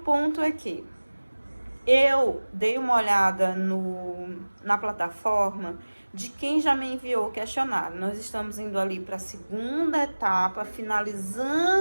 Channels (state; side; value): inverted; both; correlation -1.00